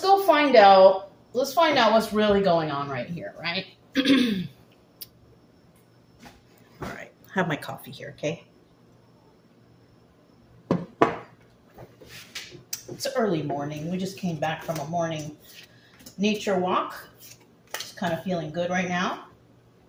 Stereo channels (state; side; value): identical; both; correlation 1.00